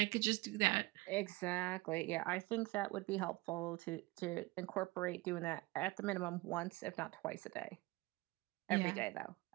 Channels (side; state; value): left; quieter; 21.8 dB